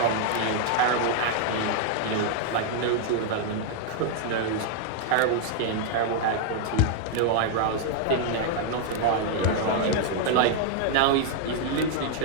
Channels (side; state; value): both; different; correlation 0.00